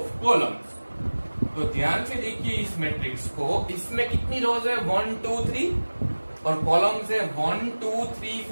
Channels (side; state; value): both; inverted; correlation -1.00